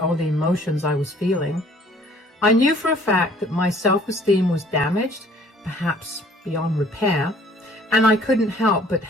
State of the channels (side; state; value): both; normal; correlation 0.56